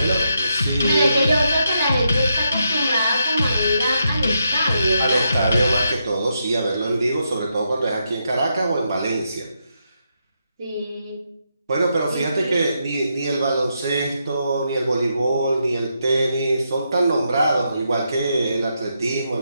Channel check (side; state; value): both; inverted; correlation -0.82